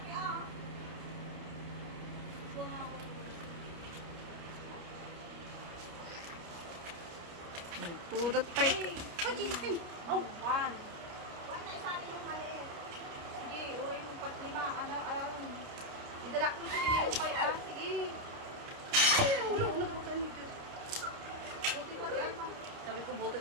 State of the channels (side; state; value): left; late; 29 ms